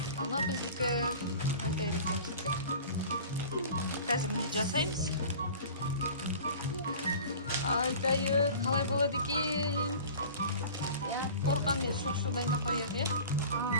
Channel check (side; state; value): both; inverted; correlation -0.40